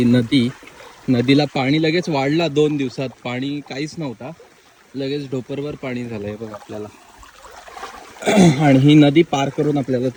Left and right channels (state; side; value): identical; both; correlation 1.00